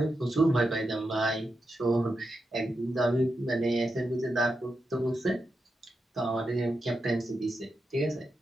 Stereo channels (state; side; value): normal; both; correlation 0.87